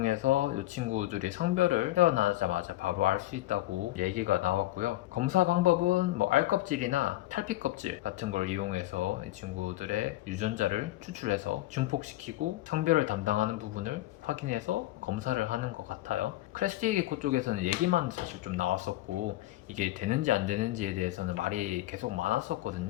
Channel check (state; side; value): quieter; right; 16.3 dB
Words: 이 친구들이 성별을 태어나자마자 바로 알 수 있다고 얘기가 나왔고요. 검사 방법은 뭐 알껍질이나 탈피껍질 같은 걸 이용해서 이 친구들의 유전자를 추출해서 증폭시키고 성별을 담당하는 부분을 확인해서 검사를 하는 것 같아요. 크래스티게코 쪽에서는 얘기만 사실 좀 나왔었고 이게 되는지 안 되는지에 대해서는 말이 계속